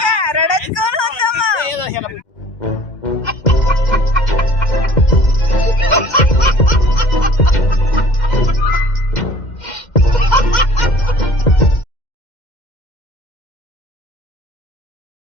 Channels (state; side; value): late; right; 2.1 ms